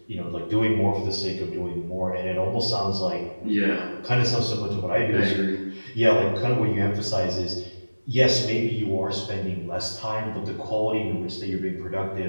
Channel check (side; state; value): both; inverted; correlation -1.00